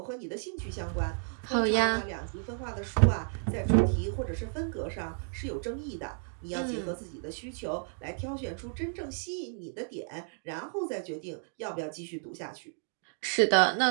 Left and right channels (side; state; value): left; silent; 56 dB below the other